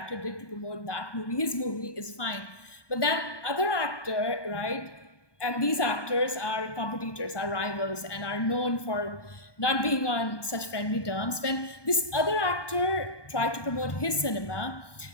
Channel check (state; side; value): late; right; 1.2 ms